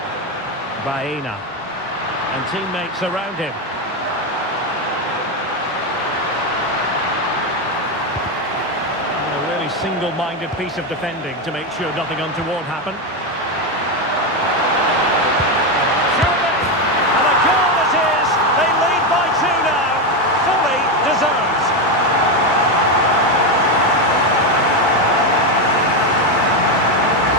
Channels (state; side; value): normal; both; correlation 0.09